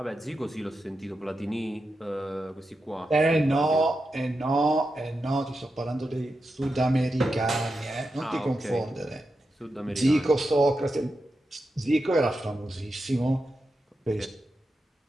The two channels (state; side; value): normal; both; correlation 0.89